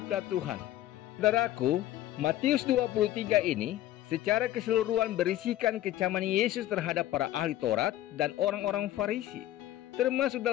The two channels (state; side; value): quieter; right; 13.8 dB